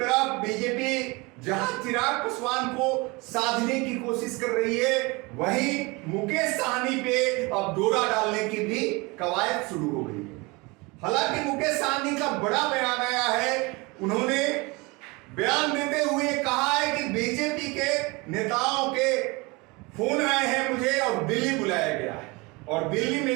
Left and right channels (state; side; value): quieter; left; 25.7 dB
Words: बीजेपी जहां चिराग पासवान को साधने की कोशिश कर रही है, वहीं मुकेश सहनी पे अब डोरा डालने की भी कवायद शुरू हो गई है। हालांकि मुकेश सहनी का बड़ा बयान आया है। उन्होंने बयान देते हुए कहा है कि बीजेपी के नेताओं के फोन आए हैं मुझे और दिल्ली बुलाया गया है और दिल्ली